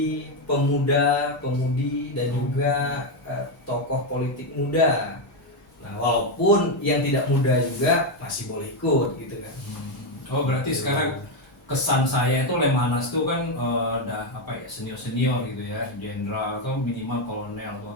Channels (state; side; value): late; right; 1.8 ms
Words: pemuda, pemudi dan juga tokoh politik muda. Nah, walaupun yang tidak muda juga masih boleh ikut gitu kan. Oh, berarti sekarang kesan saya itu Lemhanas tuh kan udah senior-senior gitu ya, jenderal atau minimal kolonel atau